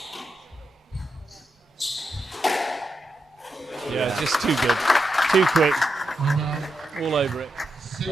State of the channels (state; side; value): normal; both; correlation 0.86